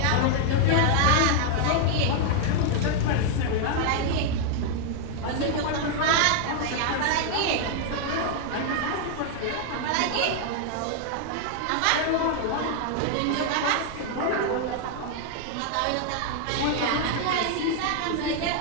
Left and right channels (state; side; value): different; both; correlation 0.00